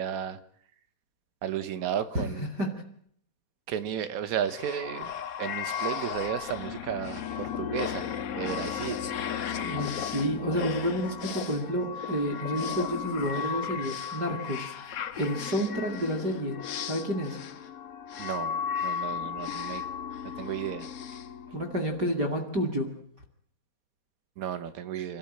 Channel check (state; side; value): late; left; 4.2 ms